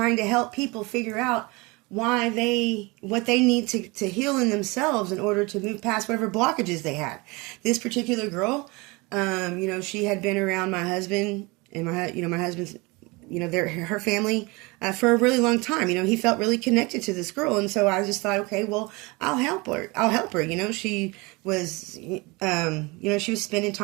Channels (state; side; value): quieter; left; 25.5 dB